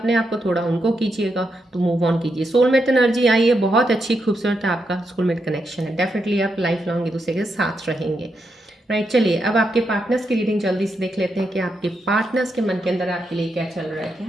आप को, थोड़ा उनको कीजिएगा, तो मूव ऑन कीजिए. सोलमेट एनर्जी आई है, बहुत अच्छी खूबसूरत आपका सोलमेट कनेक्शन है. डेफिनेटली आप लाइफ लॉन्ग एक दूसरे के साथ रहेंगे. राइट, चलिए अब आपके पार्टनर्स की रीडिंग जल्दी से देख लेते हैं कि आपके पार्टनर्स के मन के अंदर आपके लिए क्या चल रहा है,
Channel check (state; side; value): normal; both; correlation 0.83